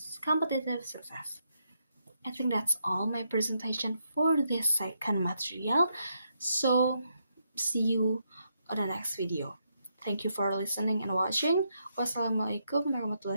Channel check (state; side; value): inverted; both; correlation -0.79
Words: competitive success. I think that's all my presentation for this second material. So, see you on the next video. Thank you for listening and watching. Wassalamualaikum